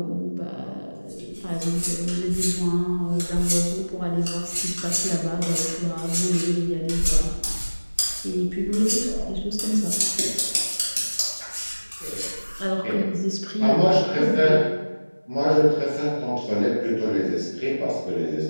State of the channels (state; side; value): inverted; both; correlation -1.00